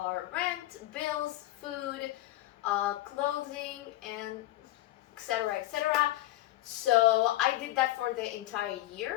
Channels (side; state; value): right; quieter; 15.9 dB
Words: rent, bills, food, clothing, and etc., etc. So I did that for the entire